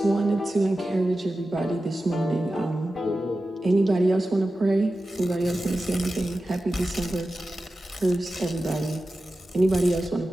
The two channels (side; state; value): both; normal; correlation 0.94